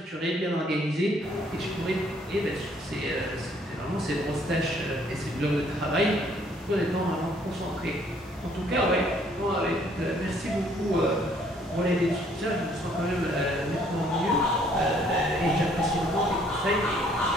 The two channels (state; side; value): normal; both; correlation 0.63